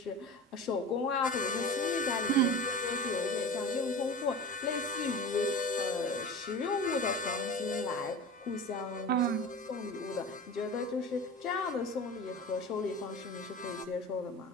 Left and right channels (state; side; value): normal; both; correlation 0.33